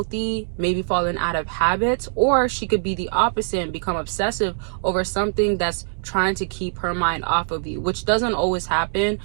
maybe falling out of habits, or she could be the opposite and become obsessive over something that's trying to keep her mind off of you, which doesn't always happen.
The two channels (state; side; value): silent; left; digital silence